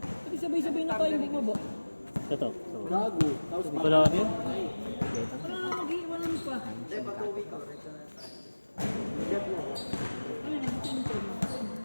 Pwede sabay-sabay na tayo bumaba. Ito. Gago. Tapos Wala ka din? Wala na mag-iwanan pa.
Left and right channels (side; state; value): both; inverted; correlation -1.00